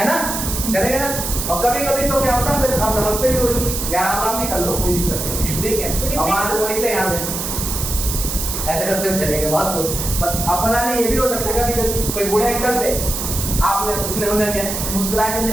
ना, करेंगे ना। और कभी कभी तो क्या होता है, फिर आप नमस्ते भी होगी, या राम राम भी कर लो, कोई दिक्कत नहीं, ठीक है। और वहां से वो निकले यहाँ से ऐसे करते हुए चले गए, बहुत कुछ। अब पता नहीं ये भी हो सकता है कभी कभी कोई बूढ़े अंकल थे, आपने उसने उन्हें क्या मुस्कुरा के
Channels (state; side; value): noise; right; hiss, 4 dB below the sound